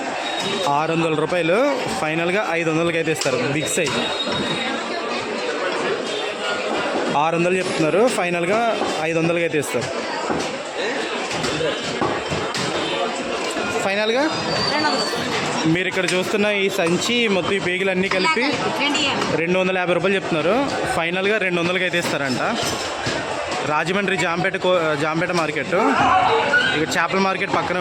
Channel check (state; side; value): identical; both; correlation 1.00